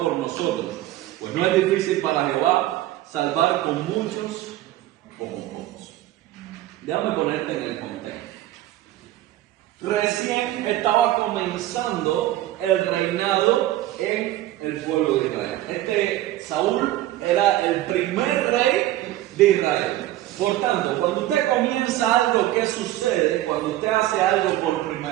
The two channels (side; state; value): left; quieter; 14.8 dB